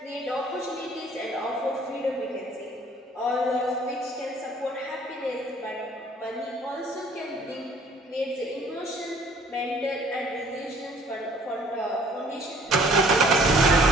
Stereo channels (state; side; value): normal; both; correlation 0.57